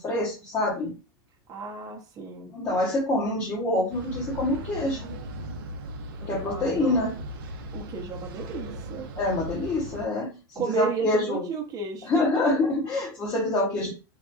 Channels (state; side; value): normal; both; correlation 0.27